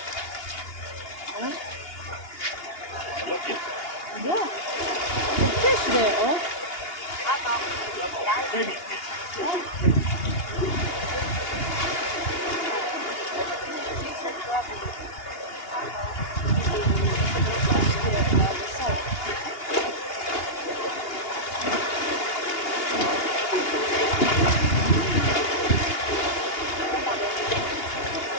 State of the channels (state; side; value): late; right; 2.8 ms